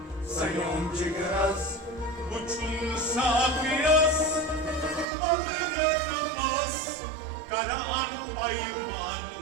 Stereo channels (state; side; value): drops out; left; at 5.1 s